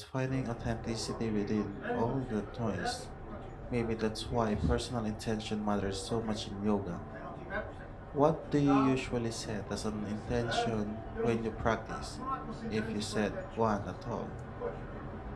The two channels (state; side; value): identical; both; correlation 1.00